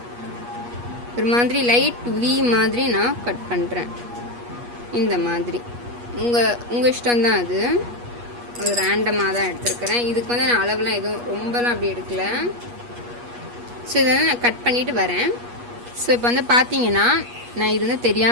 ஒரு மாதிரி லைட் வி மாதிரி நான் கட் பண்ணுறேன். இந்த மாதிரி உங்கள் இஷ்டம்தான். அது ஒரு ரேண்டமாக தான் எடுத்துருக்கிறேன். இதுக்கு வந்து நான் அளவுலாம் எதுவும் ரொம்பலாம் அப்படி எடுக்கல. ஸோ இதை வந்து நான் கட் பண்ணிவிட்டு வரேன். ஸோ இப்போ வந்து பார்த்தீங்கன்னா நான் இது வந்து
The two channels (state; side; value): late; left; 8.4 ms